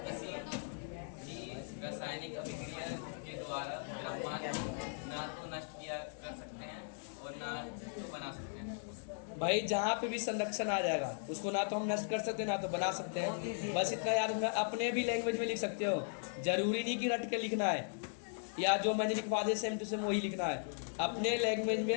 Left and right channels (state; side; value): silent; right; digital silence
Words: किसी भी रासायनिक अभिक्रिया के द्वारा द्रव्यमान ना तो नष्ट किया कर सकते हैं और ना तो बना सकते हैं। भाई जहाँ पे भी संरक्षण आ जाएगा उसको ना तो हम नष्ट कर सकते हैं ना तो बना सकते हैं। बस इतना याद रखना, अपने भी लैंग्वेज में लिख सकते हो, जरूरी नहीं कि रट के लिखना है, या जो मैंने लिखवा दिया सेम टू सेम वही लिखना है, अपने लैंग्वेज में